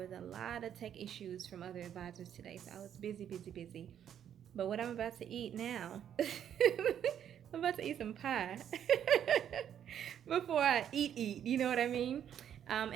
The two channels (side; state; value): left; quieter; 9.5 dB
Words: a lot of tech issues from other advisors today. So I was busy. But what I'm about to eat now, I'm about to eat some pie before I eat, you know what I mean?